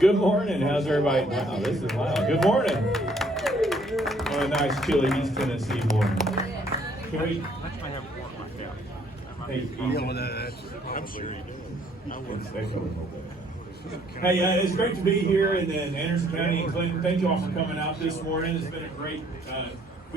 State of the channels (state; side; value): normal; both; correlation 0.64